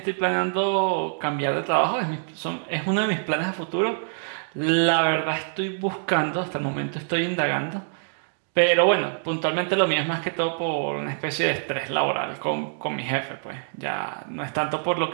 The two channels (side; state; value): left; silent; digital silence